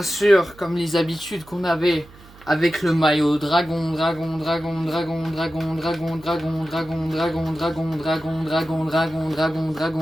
sûr, comme les habitudes qu'on avait avec le maillot dragon, dragon, dragon, dragon, dragon, dragon, dragon, dragon, dragon, dragon, dragon, dragon, dragon, dragon,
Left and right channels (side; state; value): right; noise; hum, 22 dB below the sound